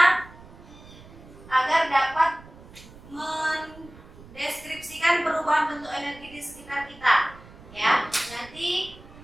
agar dapat mendeskripsikan perubahan bentuk energi di sekitar kita. Ya, nanti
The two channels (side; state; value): right; noise; rumble, 20 dB below the sound